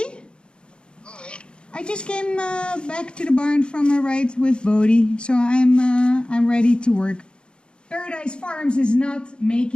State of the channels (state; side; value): late; right; 0.053 ms